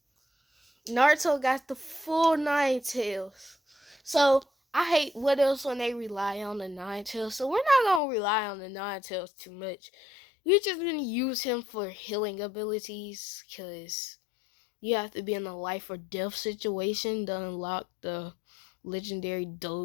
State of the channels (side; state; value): right; drops out; at 8.0 s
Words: Naruto got the full Nine Tails. So I hate what else when they rely on the Nine Tails. So we're not gonna rely on the Nine Tails too much. We're just gonna use him for healing abilities, because you have to be in a life or death situation to unlock the legendary